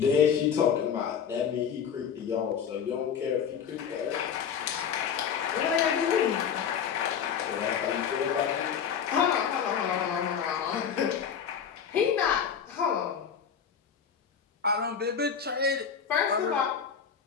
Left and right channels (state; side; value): quieter; right; 7.5 dB